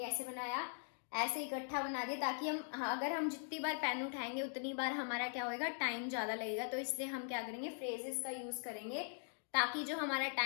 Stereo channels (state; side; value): silent; right; digital silence